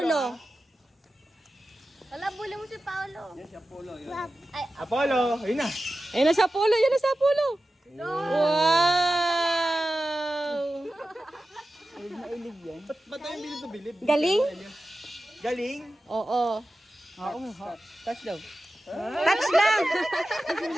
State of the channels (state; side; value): normal; both; correlation 0.93